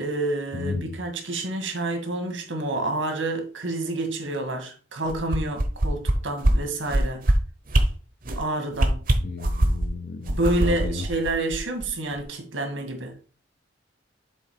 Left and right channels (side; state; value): both; normal; correlation 0.67